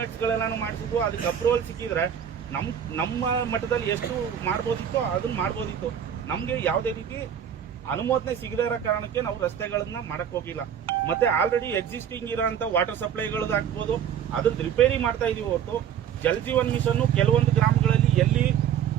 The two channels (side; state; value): left; quieter; 8.9 dB